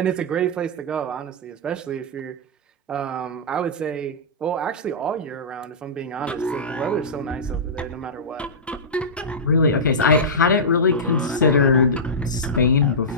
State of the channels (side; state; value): both; normal; correlation -0.15